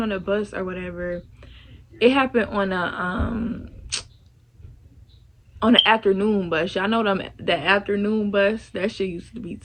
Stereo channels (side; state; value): both; identical; correlation 1.00